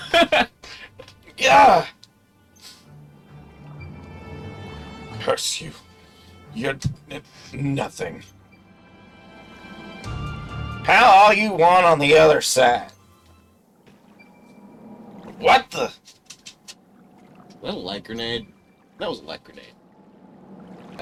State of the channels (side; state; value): both; identical; correlation 1.00